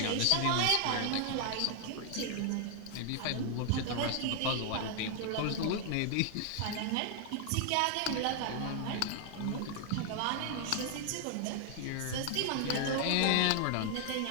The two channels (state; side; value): different; both; correlation 0.00